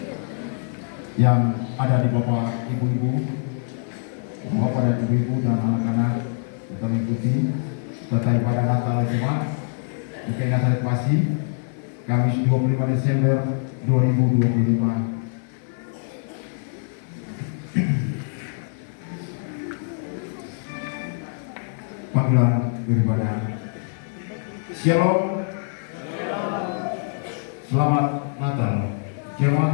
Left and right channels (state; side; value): silent; right; 55 dB below the other